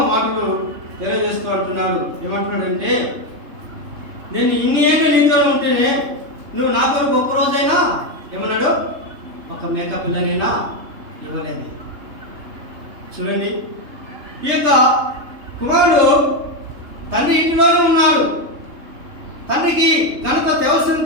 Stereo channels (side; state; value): left; late; 3.3 ms